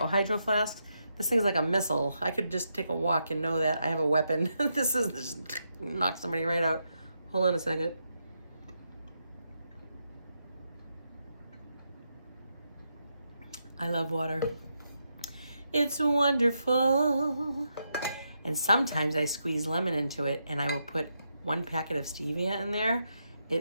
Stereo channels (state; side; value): inverted; both; correlation -0.83